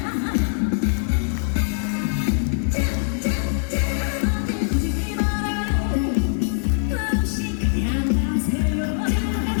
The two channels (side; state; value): right; silent; digital silence